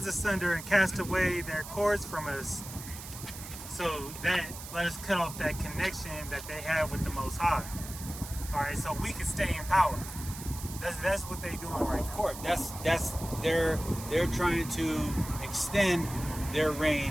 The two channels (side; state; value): right; noise; hiss, 12 dB below the sound